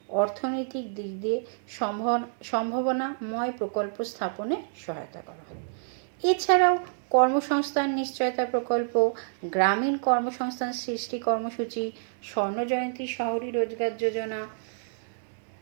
অর্থনৈতিক দিক দিয়ে সম্ভাবনাময় প্রকল্প স্থাপনে সহায়তা করা হয়। এছাড়াও কর্মসংস্থান নিশ্চয়তা প্রকল্প, গ্রামীণ কর্মসংস্থান সৃষ্টি কর্মসূচি, স্বর্ণজয়ন্তী শহরী রোজগার যোজনা,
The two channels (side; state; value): left; silent; 59 dB below the other